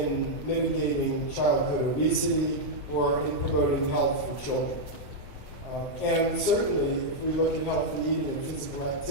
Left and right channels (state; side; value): late; right; 7.2 ms